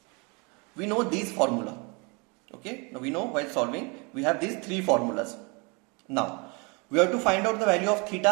we know these formula. Okay, now we know while solving we have these three formulas. Now we have to find out the value of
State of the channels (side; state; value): left; quieter; 30.6 dB